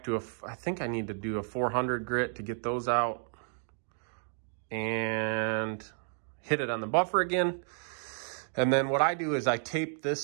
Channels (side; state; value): left; silent; 57 dB below the other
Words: to I think I need to do a 400 grit to get those out, and hit it on the buffer again. And then what I do is I tape